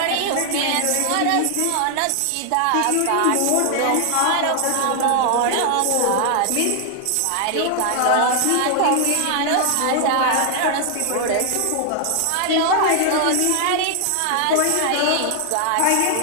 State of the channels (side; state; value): both; different; correlation 0.00